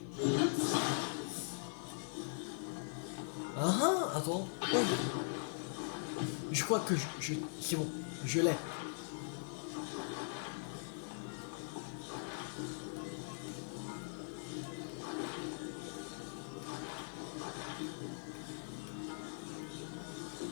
Ah ah, attends. Oh. Je crois que c'est bon, je l'ai.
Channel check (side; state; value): right; silent; 50 dB below the other